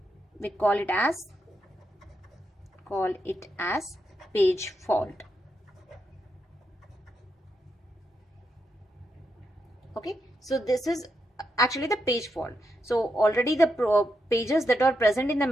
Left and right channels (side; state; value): both; normal; correlation 0.83